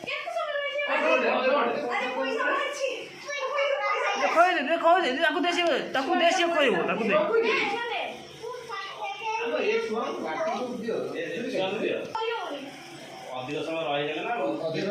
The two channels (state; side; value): identical; both; correlation 1.00